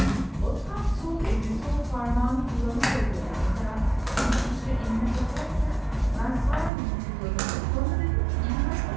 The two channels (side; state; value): left; drops out; at 6.7 s